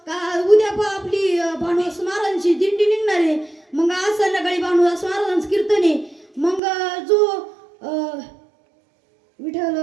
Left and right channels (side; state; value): left; drops out; at 6.6 s